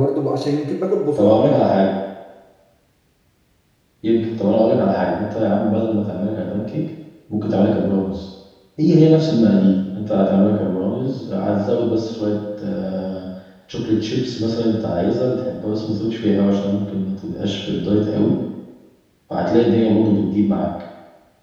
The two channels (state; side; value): identical; both; correlation 1.00